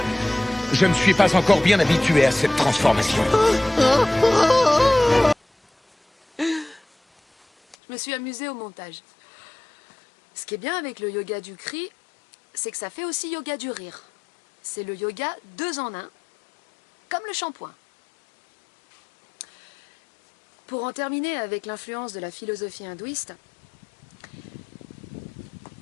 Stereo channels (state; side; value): drops out; right; at 7.8 s